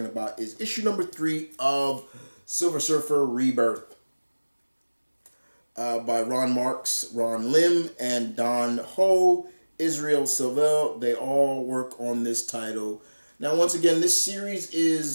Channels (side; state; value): both; inverted; correlation -1.00